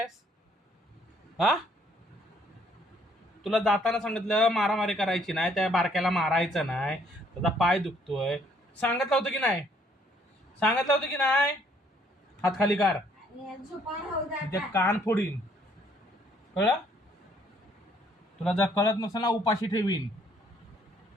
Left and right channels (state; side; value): normal; both; correlation 0.65